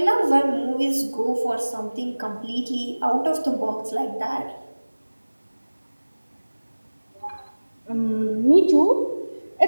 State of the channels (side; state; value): both; inverted; correlation -1.00